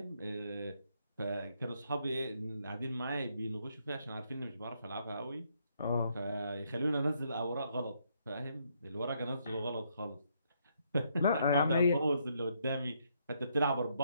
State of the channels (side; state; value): both; inverted; correlation -0.73